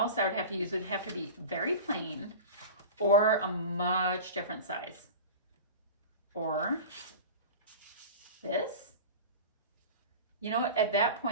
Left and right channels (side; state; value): both; inverted; correlation -0.32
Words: I would have to use would have to be very plain or a much different size. Or this. You know, at that